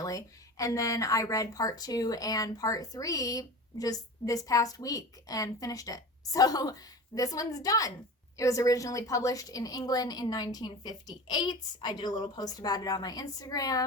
And then I read part 2 and part 3 just this past week and finished it. So this one's done. It was originally published in England in 1958. I did a little post about it on my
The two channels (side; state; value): both; normal; correlation 0.33